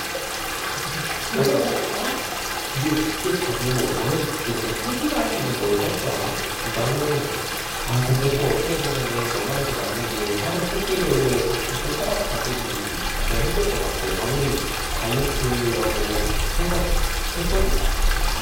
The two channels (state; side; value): identical; both; correlation 1.00